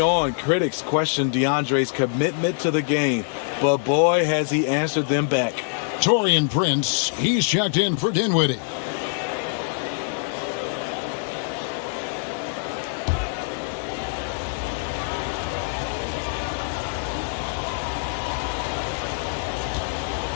critics questioned DeAndre's commitment to the game, but boy, has he answered them back. Taurean Prince, he's checked in for Dinwiddie.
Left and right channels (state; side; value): silent; right; digital silence